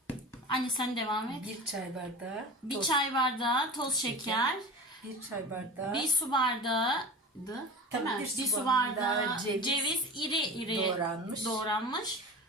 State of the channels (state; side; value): normal; both; correlation 0.33